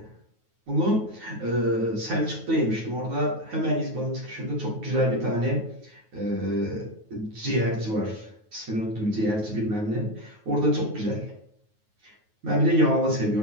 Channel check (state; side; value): late; left; 9.3 ms